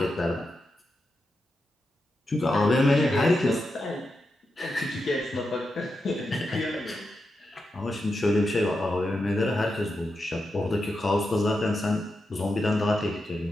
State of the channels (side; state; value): both; normal; correlation 0.88